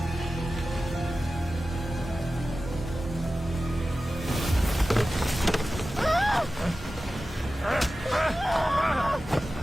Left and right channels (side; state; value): both; normal; correlation 0.95